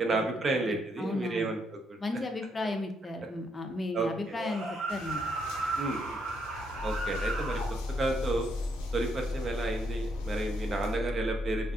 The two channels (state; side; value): normal; both; correlation 0.75